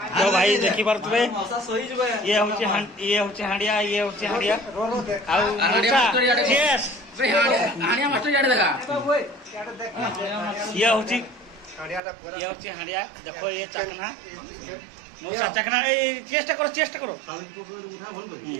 तो भाई देखि पारतबे ये होचे हांडिया आउ यस हानिया मास्टर जाडे देखा ये होचे हांडिया देखो ये चखना मौसा चखना ए चेष्टा करो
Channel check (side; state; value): left; drops out; at 12.0 s